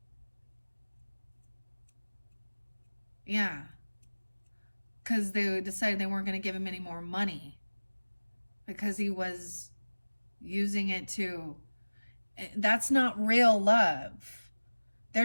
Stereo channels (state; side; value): inverted; both; correlation -1.00